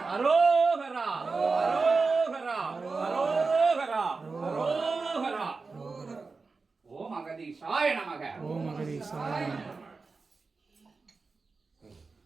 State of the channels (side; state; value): left; quieter; 4.2 dB